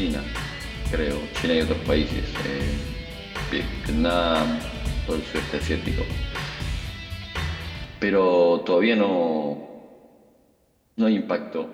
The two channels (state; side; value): identical; both; correlation 1.00